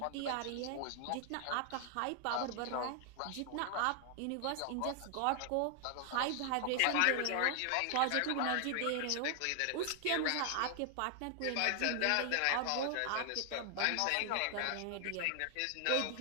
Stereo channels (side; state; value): both; different; correlation 0.00